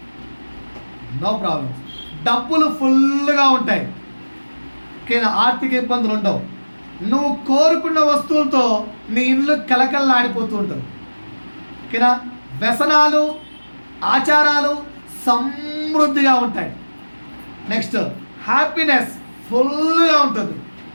నో ప్రాబ్లం. డబ్బులు ఫుల్గా ఉంటాయి, కానీ ఆర్థిక ఇబ్బందులు ఉండవు. నువ్వు కోరుకున్న వస్తువులతో నీ ఇల్లు కలకల్లాడిపోతూ ఉంటుంది. ఓకేనా? వ్యసనాలు, ఆచారాలు సమృద్ధిగా ఉంటాయి. నెక్స్ట్ హ్యాపీనెస్ ఫుల్గా ఉంటుంది.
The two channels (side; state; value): both; inverted; correlation -1.00